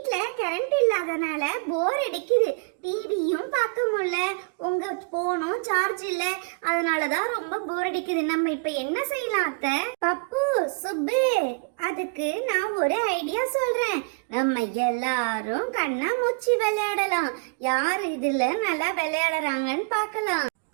கரண்ட் இல்லாதனால போர் அடிக்குது. டிவியும் பார்க்க முடியல, உங்க போனும் சார்ஜ் இல்ல, அதனாலதான் ரொம்ப போர் அடிக்குது. நம்ம இப்ப என்ன செய்யலாம் அத்தை? பப்பு, சுப்பு, அதுக்கு நான் ஒரு ஐடியா சொல்றேன். நம்ம எல்லாரும் கண்ணாமூச்சி விளையாடலாம். யார் இதுல நல்லா விளையாடுறாங்கன்னு பார்க்கலாம்.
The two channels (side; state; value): left; quieter; 35.7 dB